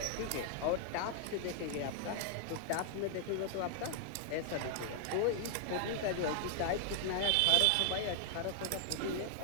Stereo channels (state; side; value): different; both; correlation 0.00